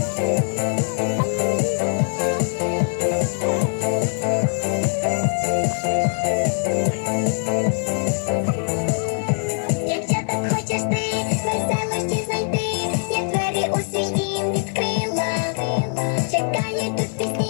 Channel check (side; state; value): right; silent; digital silence